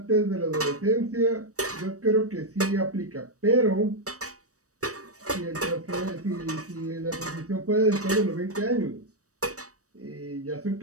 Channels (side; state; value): left; late; 0.66 ms